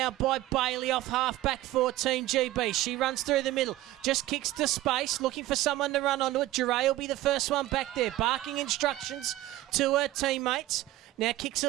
by Bailey off half-back for Team GB. She runs through the middle. Just kicks to space, looking for someone to run onto it. Duray will be the first one back there, barking instructions to her teammates. Now kicks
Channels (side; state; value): left; quieter; 15.8 dB